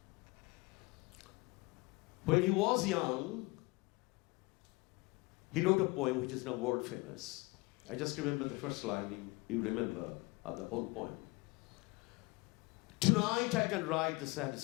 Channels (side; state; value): right; quieter; 25.5 dB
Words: when he was young, he wrote a poem which is now world famous. I just remember the first line, you remember the whole poem. Tonight I can write the